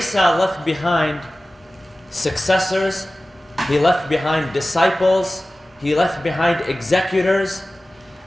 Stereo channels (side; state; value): both; normal; correlation 0.96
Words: left behind successors, he left behind disciples, he left behind executors,